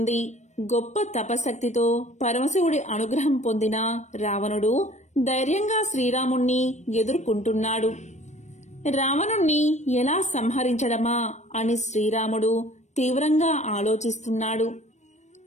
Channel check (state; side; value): late; right; 0.34 ms